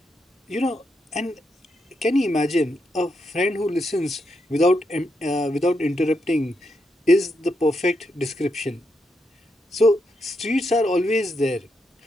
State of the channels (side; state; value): both; normal; correlation 0.82